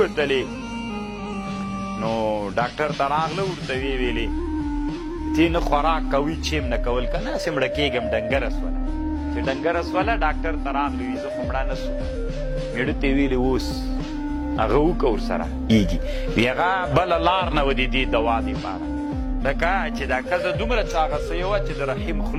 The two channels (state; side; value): identical; both; correlation 1.00